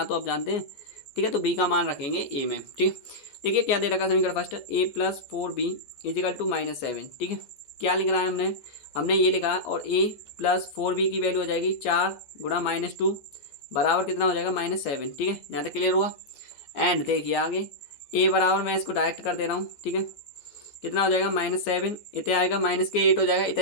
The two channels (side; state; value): right; late; 14 ms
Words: तो आप जानते हैं, ठीक है तो b का मान रखेंगे a में, ठीक। देखिए क्या दे रखा समीकरण first, a plus 4b is equal to -7, ठीक है क्या लिख रहा है हमने ये लिखा, और a प्लस 4b की वैल्यू हो जाएगी 4 गुणा -2 बराबर कितना हो जाएगा -7, ठीक है यहाँ तक क्लियर हुआ। एंड देखिए आगे a बराबर मैं इसको डायरेक्ट कर दे रहा हूँ, ठीक है कितना हो जाएगा -7, इतने आएगा -8 हो जाएगा,